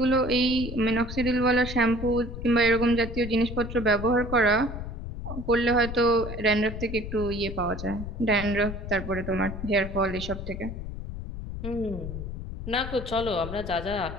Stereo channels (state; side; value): noise; left; rumble, 8 dB below the sound